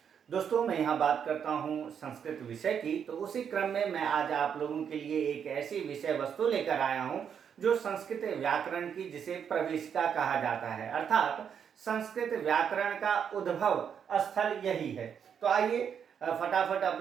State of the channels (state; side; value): quieter; left; 7.7 dB